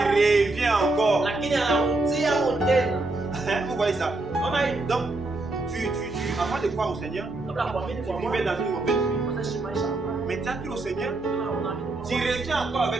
revient encore. Vous voyez ça? Donc, avant de croire au Seigneur, tu vivais dans une mauvaise vie. Mais tu as cru au Seigneur, tu reviens encore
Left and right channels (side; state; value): left; quieter; 3.0 dB